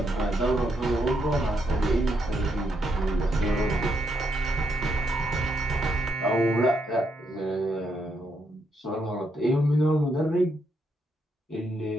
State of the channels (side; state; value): both; normal; correlation 0.78